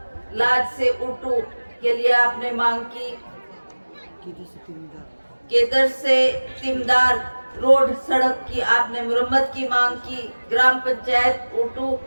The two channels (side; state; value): both; inverted; correlation -1.00